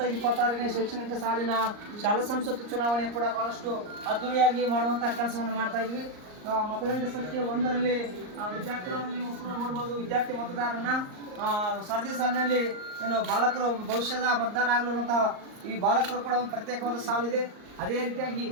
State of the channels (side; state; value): left; late; 38 ms